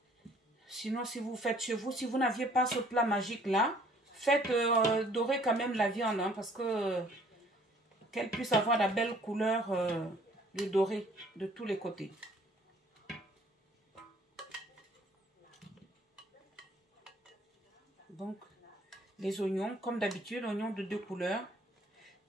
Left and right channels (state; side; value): normal; both; correlation 0.58